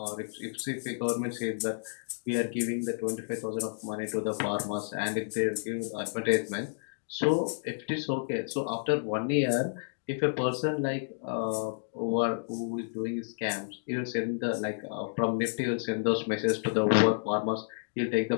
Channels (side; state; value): right; silent; digital silence